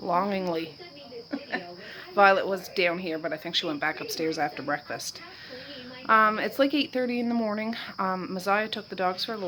Violet was down here, but I think she went back upstairs after breakfast. It's like 8:30 in the morning. Messiah took the dogs for a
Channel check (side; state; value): both; identical; correlation 1.00